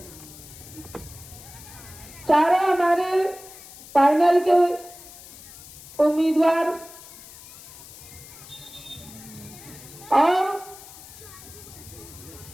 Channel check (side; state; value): left; noise; hiss, 17 dB below the sound